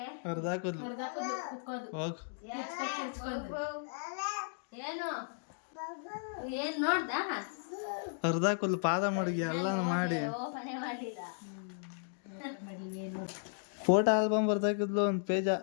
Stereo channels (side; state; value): right; silent; digital silence